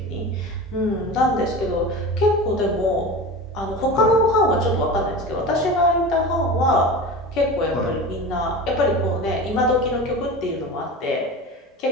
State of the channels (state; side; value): normal; both; correlation 0.31